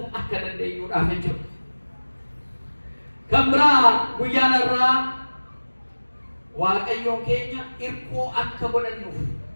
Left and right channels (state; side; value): inverted; both; correlation -1.00